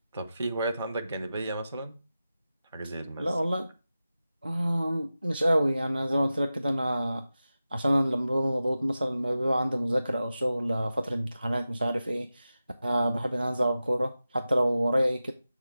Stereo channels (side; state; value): both; inverted; correlation -0.93